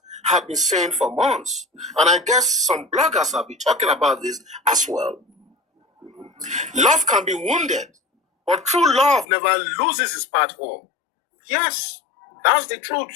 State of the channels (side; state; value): right; drops out; at 9.2 s